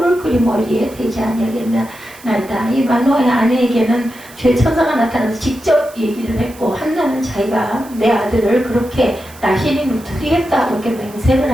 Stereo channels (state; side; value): noise; right; hiss, 21 dB below the sound